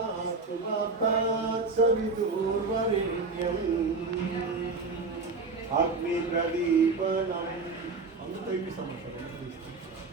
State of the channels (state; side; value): quieter; left; 4.0 dB